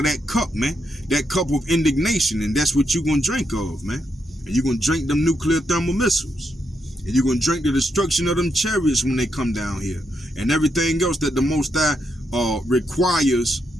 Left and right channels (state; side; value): normal; both; correlation 0.81